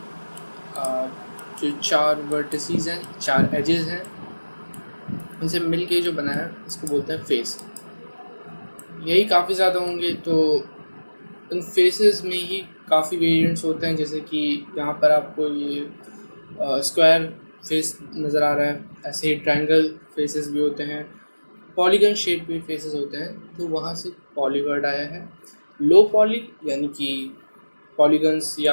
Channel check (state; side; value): inverted; both; correlation -1.00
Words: जो चार वर्टिसेस हैं, चार एजेस हैं, इनसे मिल के जो बना है इसको बोलते हैं फेस। यही काफ़ी ज़्यादा होंगे, तो इन फेसेस में ही काफ़ी वेरिएंट्स होते हैं। जैसे कि यहाँ पर आपको ये स्क्वायर फेस नज़र आ रहा है, ऐसे ही ट्रायंगल फेसेस भी होते हैं, पॉलीगन शेप के फेसेस होते हैं, तो वहाँ से पॉली वर्ड आया है। लो पॉली यानी कि पॉलीगन्स